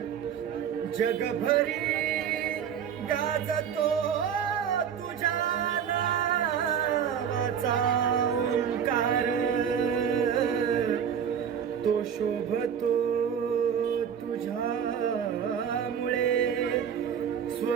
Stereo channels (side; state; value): left; quieter; 8.1 dB